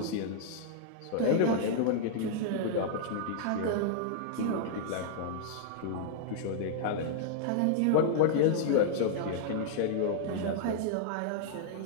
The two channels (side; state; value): both; different; correlation -0.02